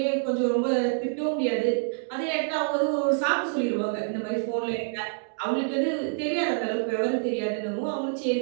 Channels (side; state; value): left; silent; digital silence